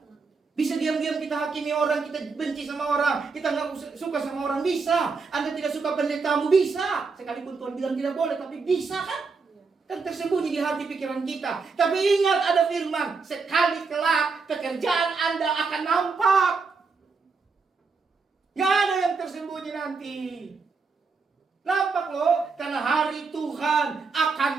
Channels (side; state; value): left; quieter; 4.7 dB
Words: Bisa diam-diam kita hakimi orang, kita benci sama orang, kita nggak suka sama orang, bisa. Anda tidak suka pendetamu, bisa. Sekalipun Tuhan bilang tidak boleh, tapi bisa kan? Kan tersembunyi di hati pikiran kita. Tapi ingat ada firman, sekali kelak pekerjaan Anda akan nampak. Nggak ada yang tersembunyi nanti. Nampak loh, karena hari Tuhan akan